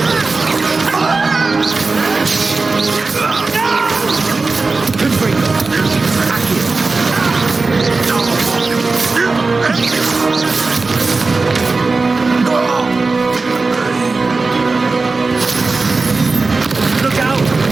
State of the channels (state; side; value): quieter; left; 3.9 dB